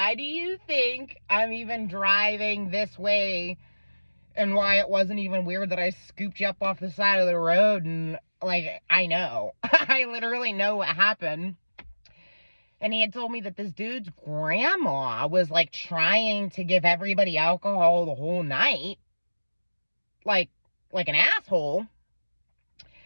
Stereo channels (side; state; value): both; inverted; correlation -1.00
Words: do you think I'm even driving this way? And why it wasn't even weird that I scooped you up off the side of the road? And, like, I know. I literally know what happened. And he had told me that this dude's grandma was, like, trying to give everybody alcohol the whole night. Like an asshole.